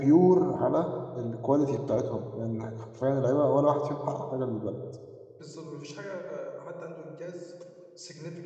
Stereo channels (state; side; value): identical; both; correlation 1.00